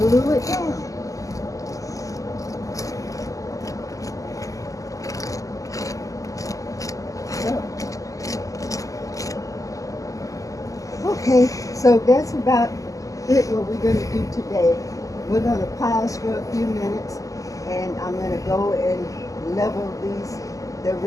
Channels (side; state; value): right; late; 0.16 ms